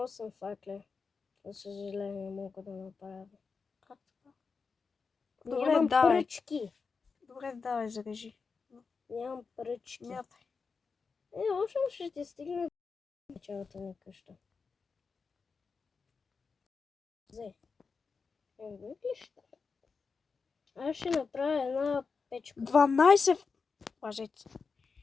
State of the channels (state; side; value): quieter; right; 5.0 dB